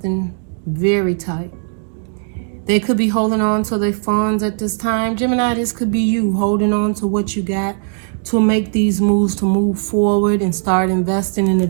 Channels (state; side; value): silent; left; digital silence